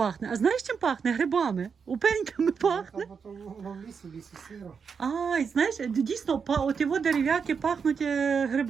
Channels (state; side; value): quieter; left; 6.1 dB